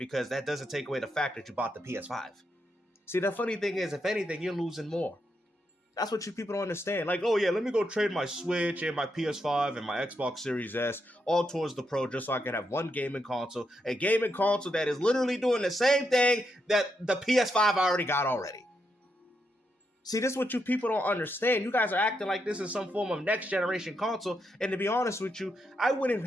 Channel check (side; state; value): both; normal; correlation 0.82